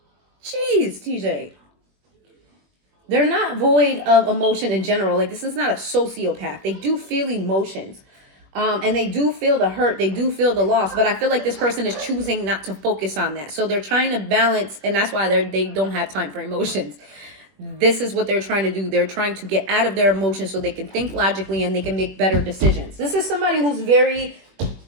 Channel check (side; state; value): left; late; 21 ms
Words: Jeez, TJ. They're not void of emotion in general. Like, this is not a sociopath. They do feel emotions. And they do feel the hurt. They do feel the loss. But I feel like this person is choosing not to focus on that. So they're trying to balance. And that's why they don't have time for emotions. This is what they're trying to do. They're trying to get out of their emotions so they can think logically and they can make better decisions. This is somebody who's very,